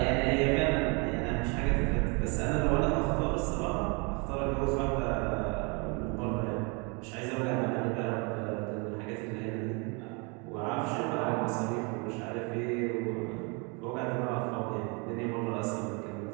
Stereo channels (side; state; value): left; quieter; 31.9 dB